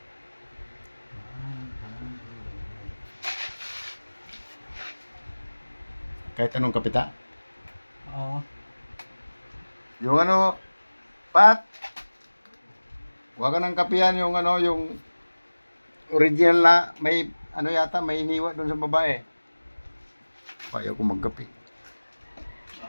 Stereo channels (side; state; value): both; inverted; correlation -1.00